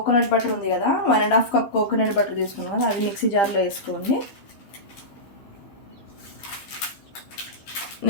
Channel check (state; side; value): late; right; 15 ms